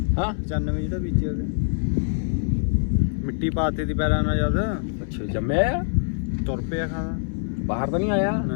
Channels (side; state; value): right; silent; 62 dB below the other